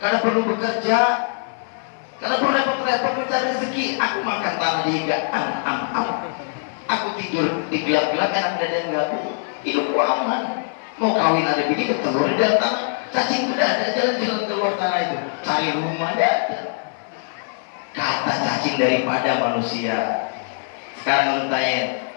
perlu bekerja, kadang perlu repot-repot mencari rezeki. Aku makan tanah di higaan, aku tidur di gelap-gelap, enak dada yang gak aku. Hidupku aman. Mau kawin ada bini bertelur di dalam tanah. Cacing tidak ada, jalan-jalan keluar tanah itu, cari rumah tidak ada. Kata cacing daripada manusia. Sekarang lu tanya,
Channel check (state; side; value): silent; right; 55 dB below the other